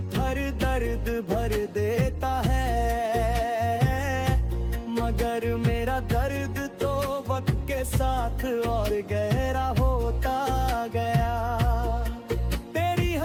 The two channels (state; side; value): identical; both; correlation 1.00